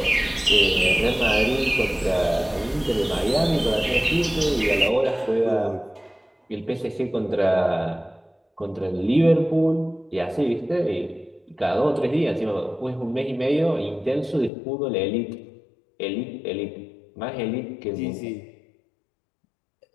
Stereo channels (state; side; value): drops out; right; at 14.5 s